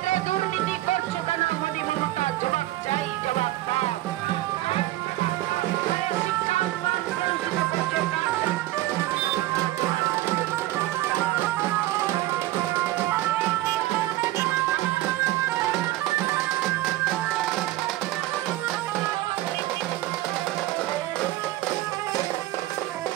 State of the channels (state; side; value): quieter; left; 16.2 dB